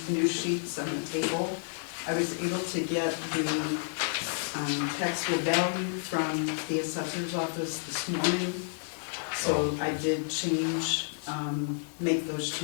new sheets on the table. I was able to get the taxable value from the assessor's office this morning. So I did change, make those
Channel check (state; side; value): silent; right; digital silence